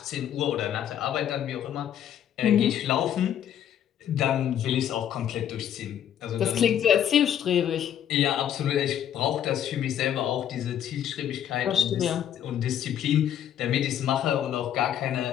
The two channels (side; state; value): right; quieter; 10.0 dB